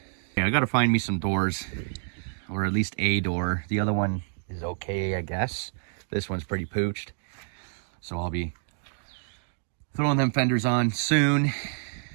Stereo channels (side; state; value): left; silent; digital silence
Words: Yeah, I got to find me some doors. Or at least a door. The other one is okay, I guess. This one's pretty pooched. So I'll be throwing them fenders on soon.